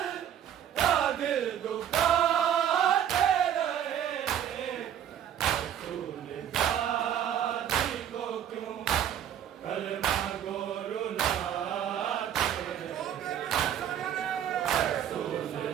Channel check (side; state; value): left; quieter; 9.9 dB